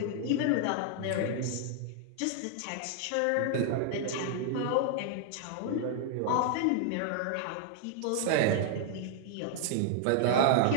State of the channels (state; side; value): different; both; correlation 0.00